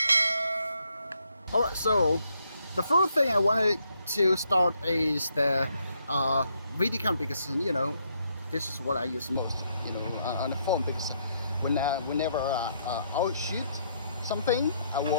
Alright, so the first thing I wanted to start is the video camera because, you know, this is what I use most, you know, on the phone because whenever I'll shoot something, I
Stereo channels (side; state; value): both; inverted; correlation -0.74